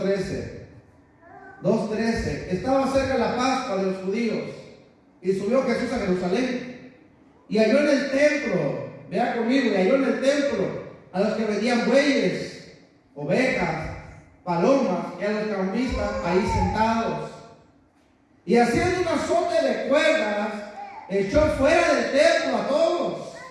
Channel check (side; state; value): both; identical; correlation 1.00